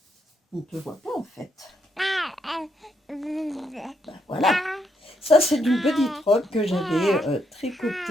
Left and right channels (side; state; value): both; normal; correlation 0.77